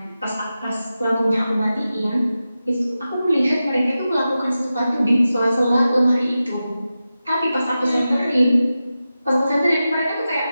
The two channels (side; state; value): both; inverted; correlation -0.93